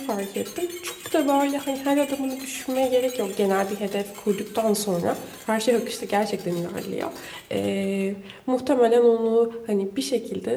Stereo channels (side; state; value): both; identical; correlation 1.00